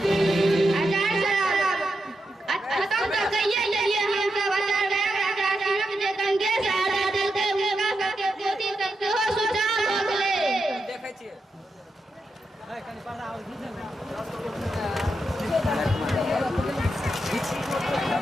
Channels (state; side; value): normal; both; correlation 0.86